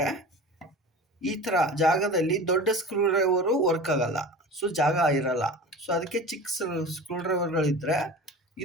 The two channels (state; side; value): normal; both; correlation 0.34